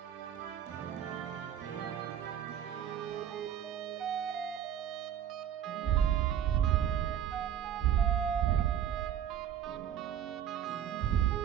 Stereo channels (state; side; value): quieter; left; 9.8 dB